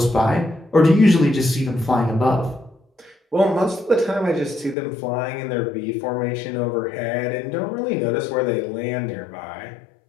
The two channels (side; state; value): right; drops out; at 4.8 s